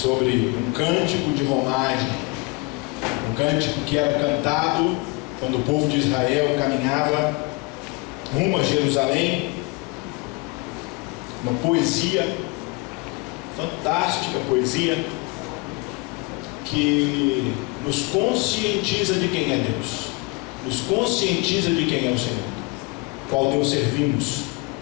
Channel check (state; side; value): quieter; right; 26.8 dB